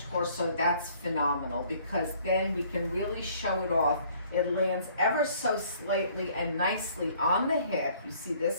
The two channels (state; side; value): inverted; both; correlation -0.59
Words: torso, that's phenomenal, because then we can really show it off. It lands ever so slightly and nicely on the hip. You see